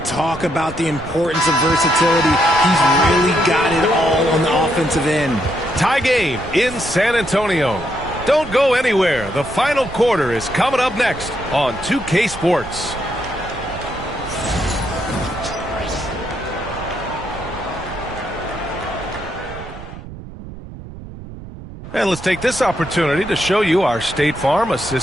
about the importance of versatility. He's really got it all on the offensive end. Tie game in San Antonio. Don't go anywhere. The final quarter is coming up next on 2K Sports. And let's take this opportunity to show you our State Farm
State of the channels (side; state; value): right; noise; rumble, 13 dB below the sound